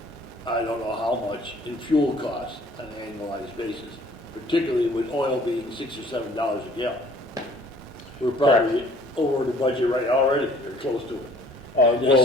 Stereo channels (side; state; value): both; normal; correlation 0.55